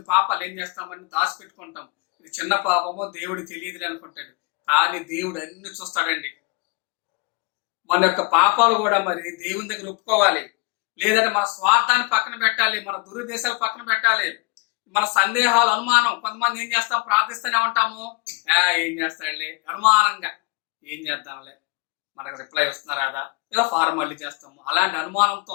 పాపాలు ఏం చేస్తామని దాచిపెట్టుకుంటాం. ఇది చిన్న పాపమో దేవుడు తెలియదు అనుకుంటాడు. కానీ దేవుడు అన్ని చూస్తాడండి. మన యొక్క పాపాలు కూడా మరి దేవుని దగ్గర ఒప్పుకోవాలి. లేదంటే మన స్వార్థాన్ని పక్కన పెట్టాలి, మన దురుద్దేశాలు పక్కన పెట్టాలి, మన సందేహాలు, అనుమానం. కొంతమంది ఏం చేస్తాం? ప్రార్థిస్తూనే ఉంటాము, ఏం చేస్తాడులే, అనుమానంగా ఏం చేద్దాంలే, మనకు రిప్లై వస్తున్నారా, ఏదో ఫార్మాలిటీ చేస్తాము. అలాంటి అనుమానంతో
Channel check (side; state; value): right; quieter; 28.4 dB